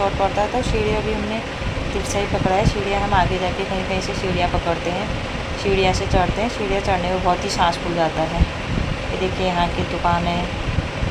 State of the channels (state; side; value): identical; both; correlation 1.00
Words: पड़ता है, तो सीढ़ियाँ भी हमने तिरछा ही पकड़ा है। सीढ़ियाँ हम आगे जाके कहीं कहीं से सीढ़ियाँ पकड़ते हैं, सीढ़ियाँ से चढ़ते हैं। सीढ़ियाँ चढ़ने में बहुत ही सांस फूल जाता है। ये देखिए यहाँ की दुकानें,